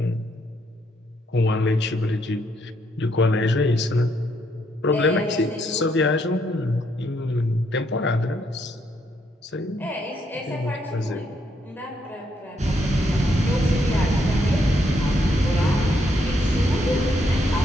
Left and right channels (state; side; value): normal; both; correlation 0.74